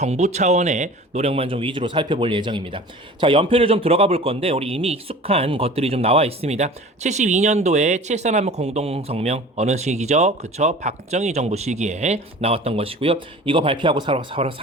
차원의 노력만 좀 위주로 살펴볼 예정입니다. 자, 연표를 좀 들어가 볼 건데, 우리 이미 익숙한 것들이 좀 나와 있습니다. 72년도에 7.4남북 공동성명, 어느 시기죠? 그쵸? 박정희 정부 시기에 나왔던 것이고요. 이거 발표하고 바로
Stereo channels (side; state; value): both; normal; correlation 0.41